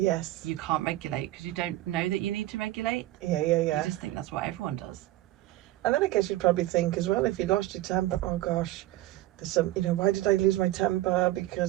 you can't regulate because you don't know that you need to regulate. Yeah. You just think that's what everyone does. And then I guess you'd probably think as well, if you lost your temper, oh gosh, there's some, why did I lose my temper? Because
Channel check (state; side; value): quieter; left; 16.2 dB